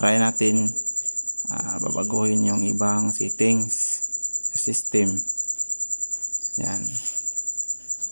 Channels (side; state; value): both; inverted; correlation -1.00